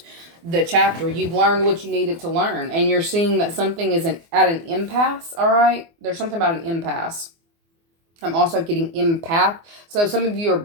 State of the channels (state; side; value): late; left; 24 ms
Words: the chapter. You've learned what you needed to learn, and you're seeing that something is at an impasse. All right. There's something about an impasse. I'm also getting empath. So some of you are